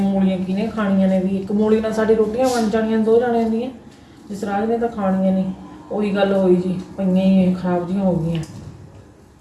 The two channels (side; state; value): both; identical; correlation 1.00